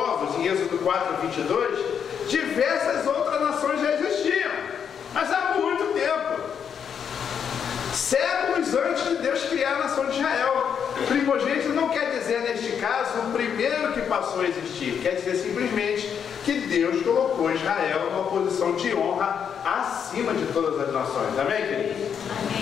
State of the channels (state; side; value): quieter; right; 7.6 dB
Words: em Êxodo 4, 22, diversas outras nações já existiam, mas há muito tempo. Séculos antes de Deus criar a nação de Israel. Primogênito não quer dizer, neste caso, o primeiro que passou a existir. Quer dizer simplesmente que Deus colocou Israel numa posição de honra acima de todas as nações. Amém, queridos?